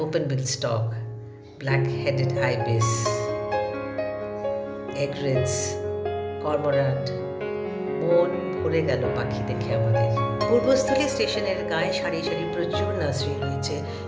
open-billed stork, black-headed ibis, egrets, cormorant. মন ভরে গেল পাখি দেখে আমাদের। পূর্বস্থলী স্টেশনের গায়ে সারি সারি প্রচুর নার্সারি রয়েছে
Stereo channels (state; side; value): identical; both; correlation 1.00